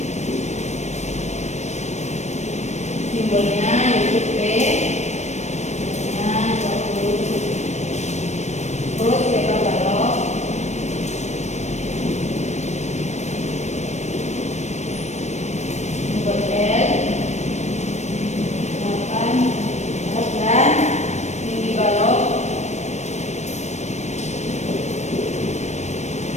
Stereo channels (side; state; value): right; late; 0.33 ms